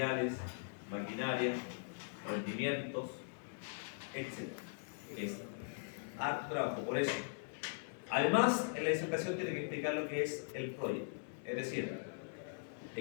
maquinaria, rendimientos, etc. Es harto trabajo, por eso. Además, en la disertación tiene que explicar lo que es el Project, es decir,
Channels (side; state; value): right; silent; digital silence